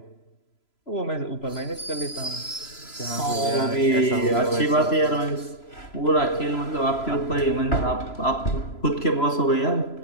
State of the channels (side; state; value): right; late; 3.0 ms